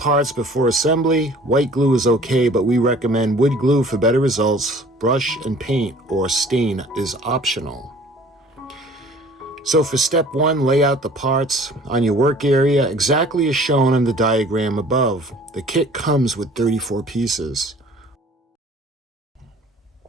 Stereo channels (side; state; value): both; normal; correlation 0.50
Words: before assembly. White glue is okay, but we recommend wood glue for better results. Brush and paint or stain is optional. So for step 1, lay out the parts on your work area exactly as shown on the diagram above. The kit comes with 34 pieces.